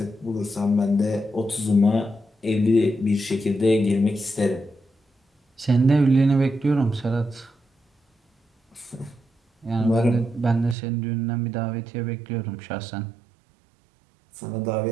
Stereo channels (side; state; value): left; drops out; at 10.8 s